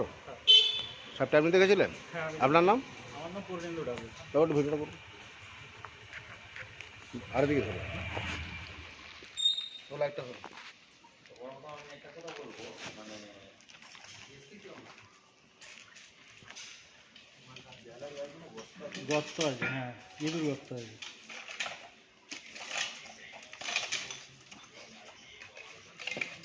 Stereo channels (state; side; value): identical; both; correlation 1.00